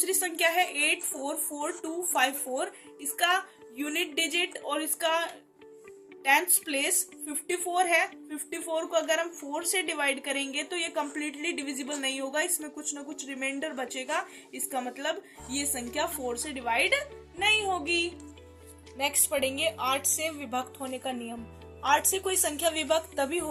संख्या है 844254, इसका यूनिट डिजिट और इसका 10th प्लेस 54 है। 54 को अगर हम 4 से डिवाइड करेंगे तो ये कम्प्लीटली डिविजिबल नहीं होगा, इसमें कुछ ना कुछ रिमाइंडर बचेगा, इसका मतलब ये संख्या 4 से डिवाइड नहीं होगी। नेक्स्ट पढ़ेंगे 8 से विभक्त होने का नियम। 8 से कोई संख्या विभक्त तभी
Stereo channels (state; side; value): identical; both; correlation 1.00